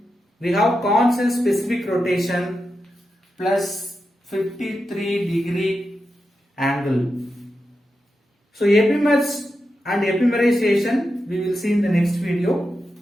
we have constant specific rotation plus 53 degree angle. So epimers and epimerization we will see in the next video.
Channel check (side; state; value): both; normal; correlation 0.89